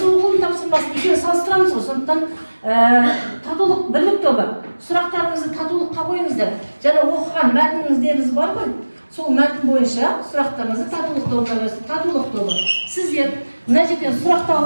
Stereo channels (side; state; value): both; inverted; correlation -1.00